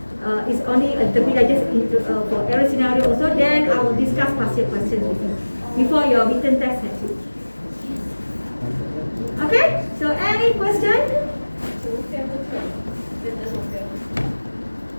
It's only a little bit I just for error scenario also. Then I will discuss past year questions with you before your written test next week. Okay? So any question?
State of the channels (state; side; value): inverted; both; correlation -1.00